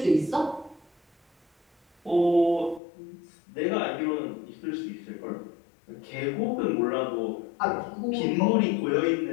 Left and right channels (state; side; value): drops out; right; at 2.8 s